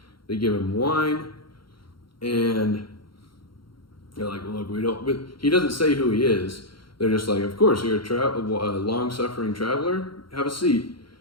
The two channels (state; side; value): late; right; 0.73 ms